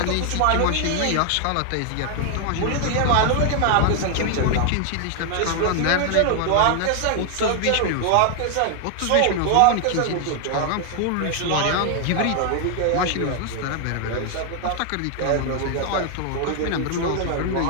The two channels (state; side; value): different; both; correlation 0.00